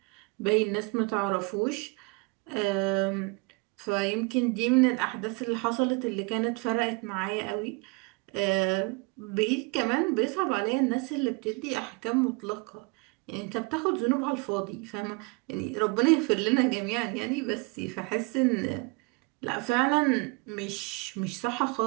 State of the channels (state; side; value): quieter; left; 28.2 dB